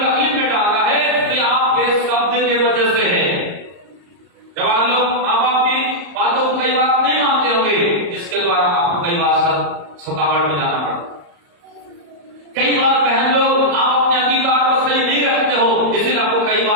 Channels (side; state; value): left; late; 34 ms